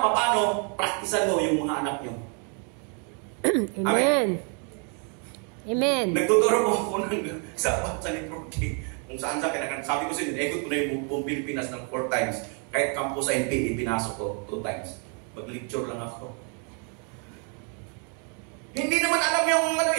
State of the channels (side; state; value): left; quieter; 39.3 dB